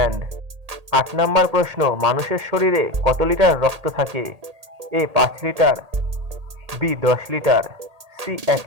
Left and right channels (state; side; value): late; left; 1.8 ms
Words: 8 নম্বর প্রশ্ন, মানুষের শরীরে কত লিটার রক্ত থাকে? A 5 litre, B 10 litre, C 1